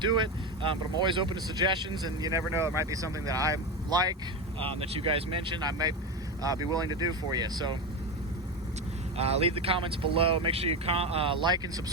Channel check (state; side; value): normal; both; correlation 0.18